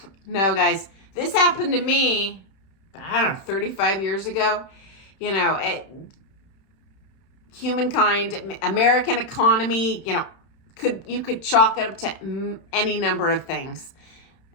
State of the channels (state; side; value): late; right; 31 ms